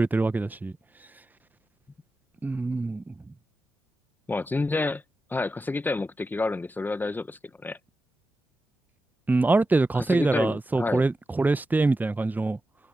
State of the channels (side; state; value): both; normal; correlation 0.92